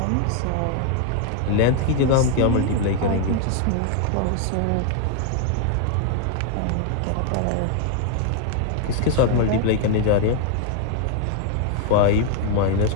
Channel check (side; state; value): both; different; correlation 0.01